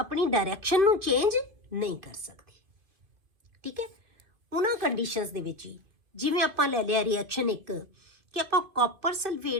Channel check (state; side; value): late; left; 2.3 ms